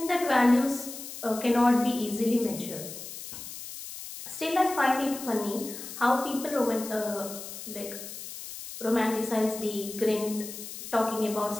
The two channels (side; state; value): left; noise; hiss, 11 dB below the sound